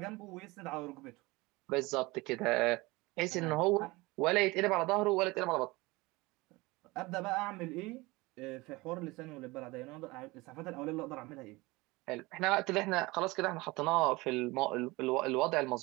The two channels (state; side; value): quieter; left; 22.5 dB